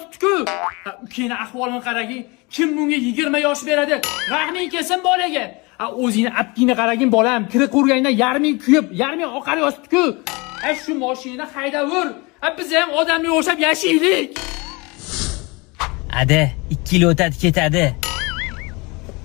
Ukeni ahvolini qaragin. Kim bunga 20 yosh beradi? Rahming kelsin bolaga. O'zingni aptingni qaragin bolam. Kira qo'rganda yarming kuyib, yarming oqar yotibdi-ku. Shu mashinani haydavur. Biz ham odamga o'xshab yashaylik. Ada, 2 yil o'tadi ketadi.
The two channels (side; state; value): right; quieter; 26.8 dB